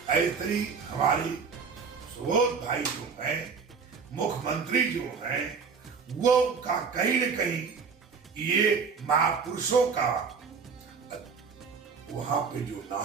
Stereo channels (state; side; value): quieter; left; 5.6 dB